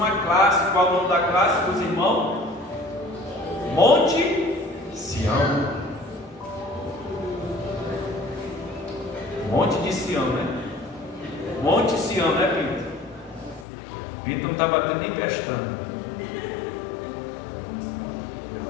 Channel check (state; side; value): drops out; right; at 13.7 s